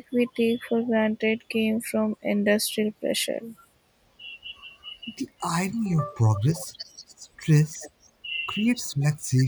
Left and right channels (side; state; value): both; identical; correlation 1.00